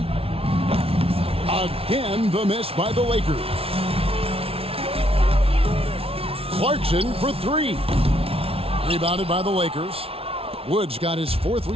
Again, the miss by the Lakers. Clarkson for three. Rebounded by the Lakers. Wood's got his 4th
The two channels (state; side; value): late; left; 0.27 ms